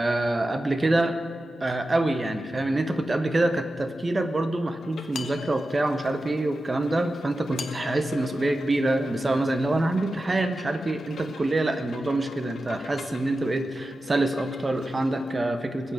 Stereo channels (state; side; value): normal; both; correlation 0.92